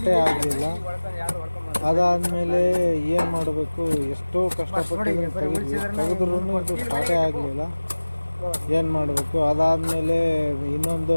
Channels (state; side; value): inverted; both; correlation -1.00